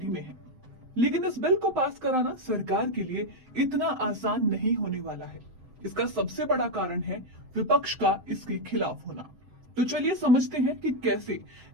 में है। लेकिन इस बिल को पास कराना सरकार के लिए इतना आसान नहीं होने वाला है। इसका सबसे बड़ा कारण है विपक्ष का इसके खिलाफ होना। तो चलिए समझते हैं कि कैसे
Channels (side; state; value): left; late; 7.8 ms